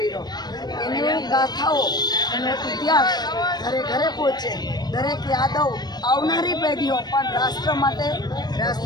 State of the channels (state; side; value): late; right; 0.20 ms